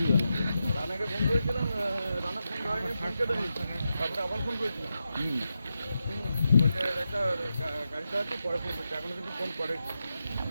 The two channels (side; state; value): both; inverted; correlation -0.88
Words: তারপরে আবার ফোন করেছিলাম, বলছে একটা গাড়ি চালাচ্ছি, পরে ফোন করছি, এখনো কিন্তু ফোন করে।